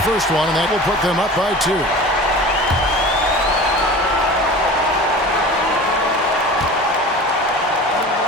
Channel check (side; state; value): both; normal; correlation 0.37